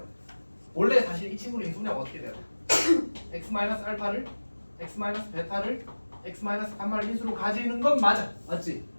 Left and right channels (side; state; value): both; inverted; correlation -1.00